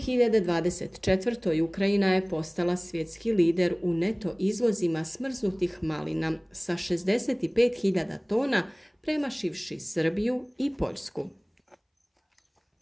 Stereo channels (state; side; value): identical; both; correlation 1.00